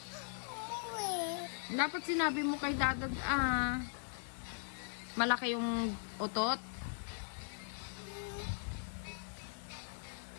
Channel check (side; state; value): right; silent; digital silence